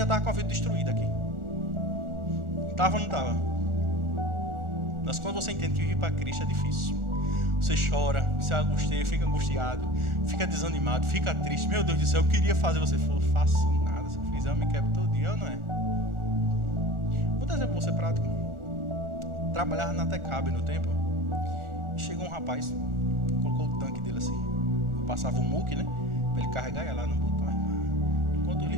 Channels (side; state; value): left; late; 1.4 ms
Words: estava com a vida destruída aqui. Estava ou não estava? Mas quando você entende que viver para Cristo é difícil. Você chora, você angustia, fica angustiado, fica desanimado, fica triste. Meu Deus do céu, eu queria fazer. Você falou, faço nada. Se eu fizer, eu me quebro todo dia. Eu não é? Vou dar um exemplo para você prático. Trabalhava na Tecabe no tempo. Chegou um rapaz, colocou o tanque dele assim. Eu passava o muque, né? Para ele carregar, ia lá no botão. Quanto